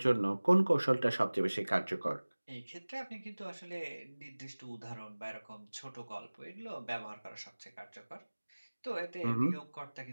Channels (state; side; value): inverted; both; correlation -1.00